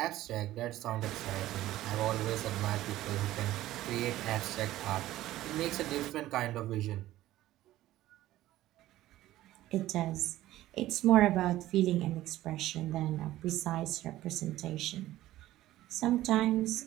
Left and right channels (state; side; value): quieter; left; 15.1 dB